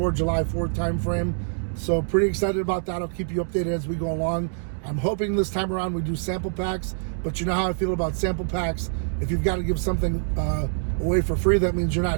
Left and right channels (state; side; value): silent; left; digital silence